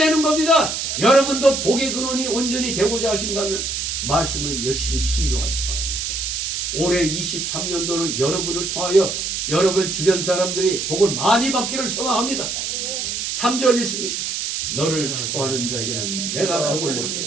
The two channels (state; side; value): noise; right; hiss, 2 dB below the sound